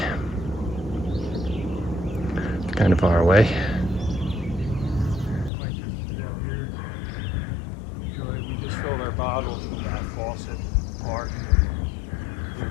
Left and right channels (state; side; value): drops out; right; at 5.5 s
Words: It's kind of far away. We just filled our bottles from that faucet park.